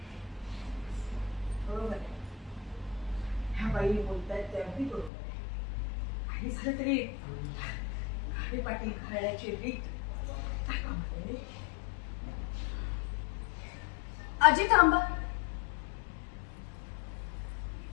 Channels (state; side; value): drops out; right; at 5.1 s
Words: बरोबर आहे. ह्या बाई बोलतायत ते अगदी बरोबर आहे. काही झालं तरी घाटे पाटील घराण्याची रीत काय कामाला. आजी थांबा.